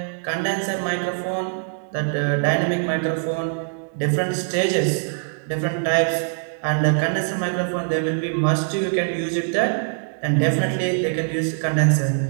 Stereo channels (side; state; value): left; silent; 64 dB below the other